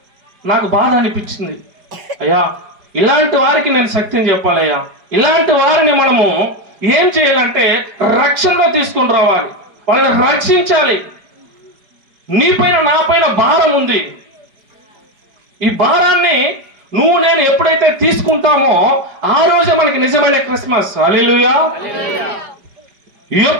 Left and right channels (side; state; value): left; late; 4.9 ms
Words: నాకు బాధ అనిపించింది. అయ్యా, ఇలాంటి వారికి నేను శక్తిని చెప్పాలయ్యా. ఇలాంటి వారిని మనము ఏం చేయాలంటే రక్షణలో తీసుకుని రావాలి, వాళ్ళని రక్షించాలి. నీ పైన నా పైన భారం ఉంది. ఈ భారాన్ని నువ్వు నేను ఎప్పుడైతే తీసుకుంటామో ఆ రోజే మనకి నిజమైన క్రిస్మస్. హల్లెలూయా.